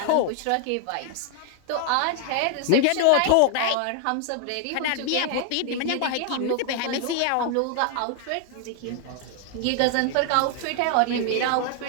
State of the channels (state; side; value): different; both; correlation 0.00